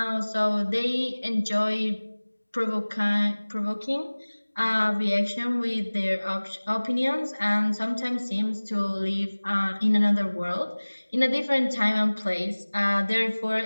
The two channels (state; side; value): inverted; both; correlation -1.00